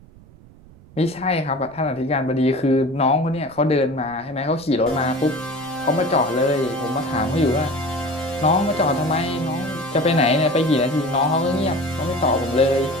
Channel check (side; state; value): right; noise; rumble, 23 dB below the sound